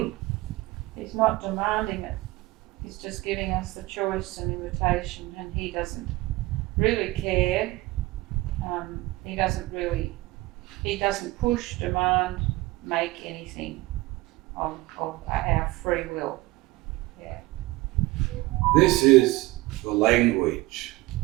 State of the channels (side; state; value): left; quieter; 20.2 dB